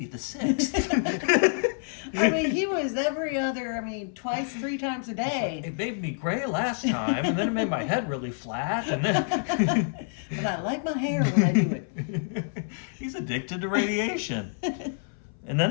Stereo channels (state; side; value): silent; right; 57 dB below the other